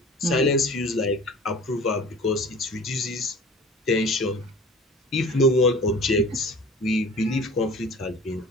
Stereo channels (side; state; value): both; normal; correlation 0.42